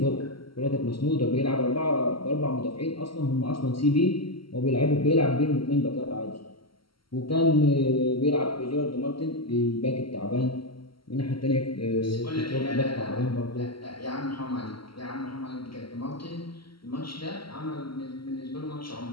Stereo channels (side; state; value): right; late; 0.74 ms